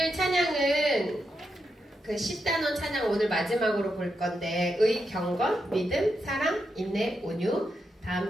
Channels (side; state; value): both; normal; correlation 0.85